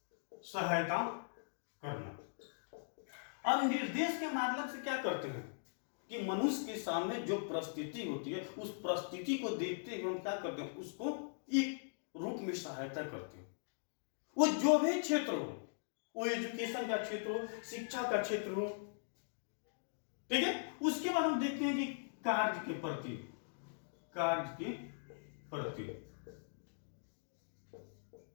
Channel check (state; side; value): silent; right; digital silence